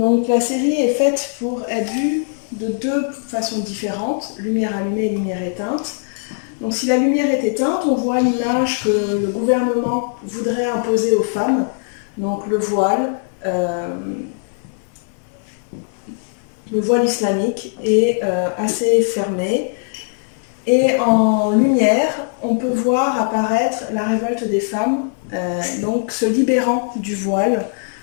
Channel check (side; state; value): right; silent; 56 dB below the other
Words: la série est faite pour être vue de deux façons différentes, lumière allumée et lumière éteinte. Donc, si la lumière est éteinte, on voit l'image que le gouvernement voudrait imposer aux femmes, donc le voile islamique est assez fermé. Et en lumière, on peut voir apparaître la révolte des femmes, donc se libérant du voile,